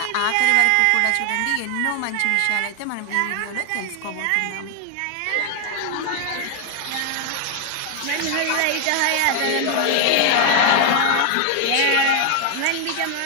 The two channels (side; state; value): both; different; correlation 0.00